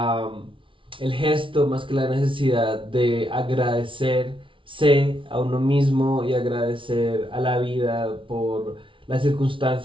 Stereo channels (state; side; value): late; left; 0.25 ms